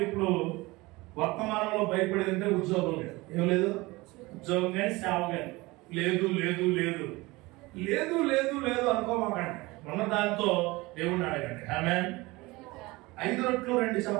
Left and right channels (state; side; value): quieter; left; 22.0 dB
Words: ఇప్పుడు వర్తమానంలో భయపడేదంటే ఉద్యోగం లేదు. ఏం లేదు? ఉద్యోగం కానీ సేవ కానీ లేదు లేదు లేదు లేదు లేదు లేదు అనుకోమాకండి. ఉన్న దాంతో దేవుడిని అడగండి. ఆమేన్. 5 రొట్టెలు 2